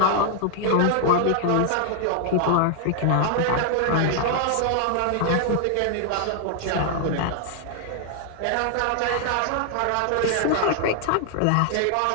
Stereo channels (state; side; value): different; both; correlation 0.00